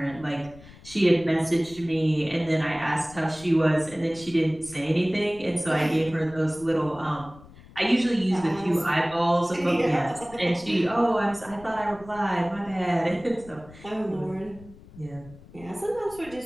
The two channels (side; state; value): left; noise; rumble, 21 dB below the sound